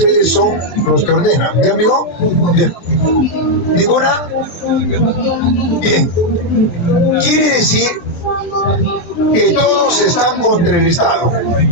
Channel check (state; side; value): late; right; 23 ms